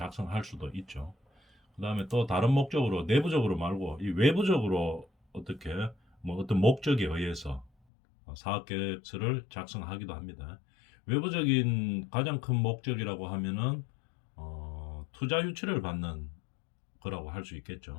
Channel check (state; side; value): drops out; right; at 7.7 s